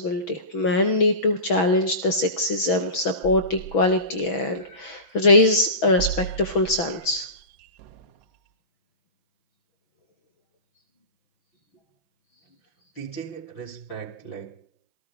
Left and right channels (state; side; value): late; right; 6.1 ms